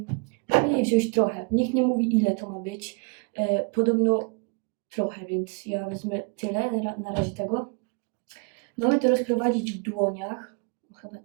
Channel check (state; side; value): quieter; left; 34.3 dB